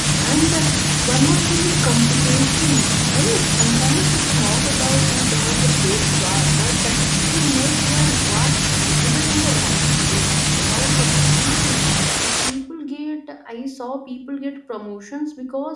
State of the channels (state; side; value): identical; both; correlation 1.00